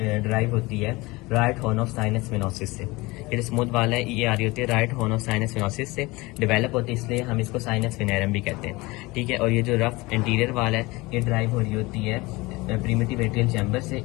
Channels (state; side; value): quieter; right; 22.6 dB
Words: होती है right horn of sinus venosus से। ये जो स्मूथ वाल है ये आ रही होती है right horn of sinus venosus से डेवलप होती है, इसलिए हम इसको साइनस वेनेरम भी कहते हैं। ठीक है, और ये जो रफ इंटीरियर वाल है ये ड्राइव हो रही होती है प्रीमिटिव एट्रियल चैम्बर से,